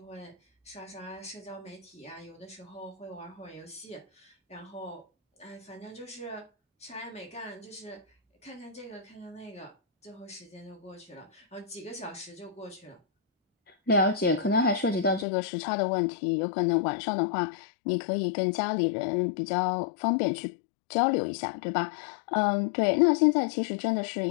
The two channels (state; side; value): drops out; right; at 15.2 s